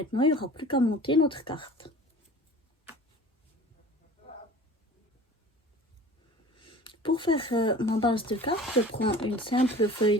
il n'y aura plus qu'à monter notre carte. Pour faire ma base de carte, je prends une simple feuille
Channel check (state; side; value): normal; both; correlation 0.43